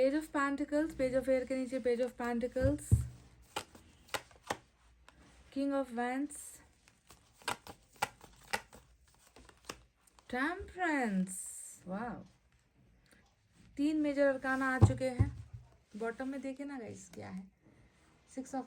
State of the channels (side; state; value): both; identical; correlation 1.00